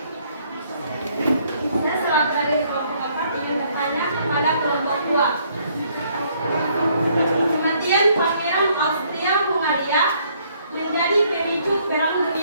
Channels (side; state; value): both; inverted; correlation -0.66